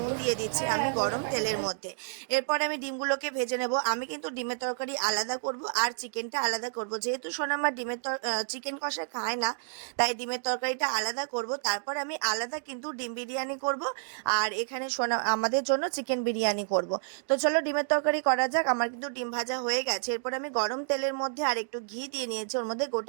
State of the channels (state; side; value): silent; left; digital silence